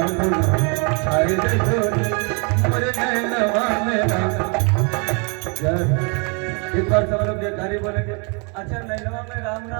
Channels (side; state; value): left; quieter; 34.8 dB